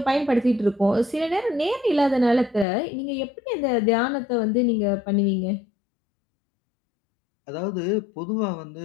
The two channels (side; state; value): right; drops out; at 2.7 s